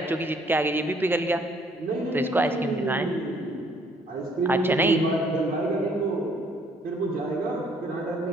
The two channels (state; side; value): normal; both; correlation 0.63